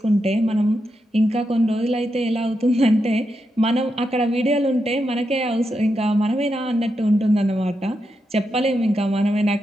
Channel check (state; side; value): normal; both; correlation 0.85